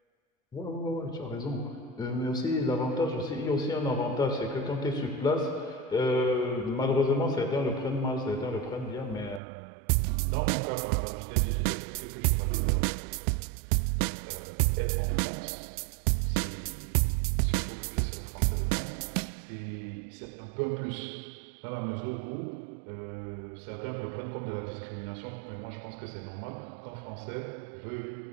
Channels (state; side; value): drops out; left; at 9.4 s